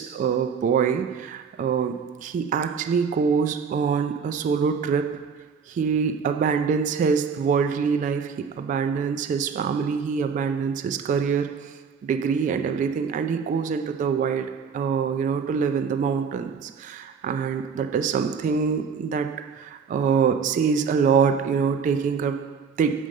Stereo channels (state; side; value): quieter; left; 6.1 dB